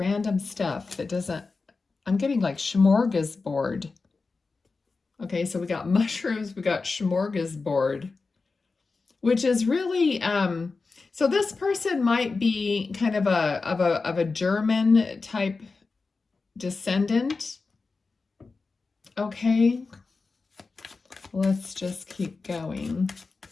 stuff that doesn't... I'm getting like smorgasbord. Okay, so we got mushrooms, we got smorgasbord, which is really... so this person might be kind of a German type descendant. Okay, let's just keep going.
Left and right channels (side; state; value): right; quieter; 4.1 dB